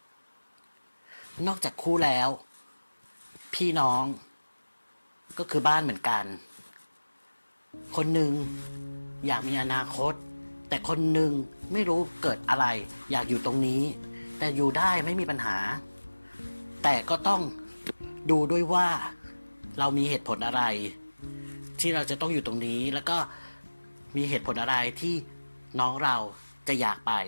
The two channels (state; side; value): inverted; both; correlation -1.00